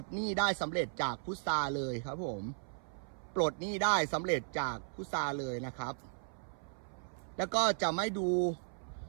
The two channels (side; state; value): left; silent; 54 dB below the other